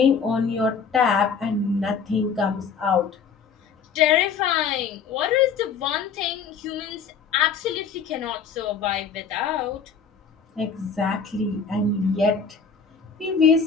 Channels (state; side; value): quieter; right; 6.1 dB